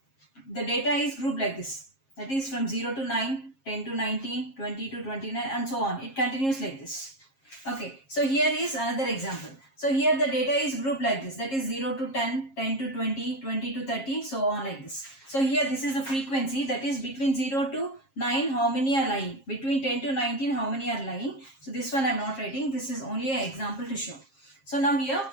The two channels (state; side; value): late; right; 7.4 ms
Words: the data is grouped like this, that is from 0 to 9, 10 to 19, 20 to 29 and so on. It continues like this. Okay, so here is another example. So here the data is grouped like this, that is 0 to 10, 10 to 20, 20 to 30, so on like this. So here this is the frequency, that is between 0 to 9 how many are lying, between 10 to 19 how many are lying. So this one I am not writing, this is only an example to show. So now here